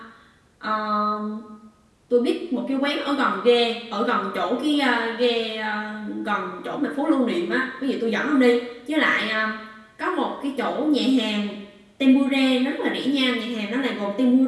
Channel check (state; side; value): identical; both; correlation 1.00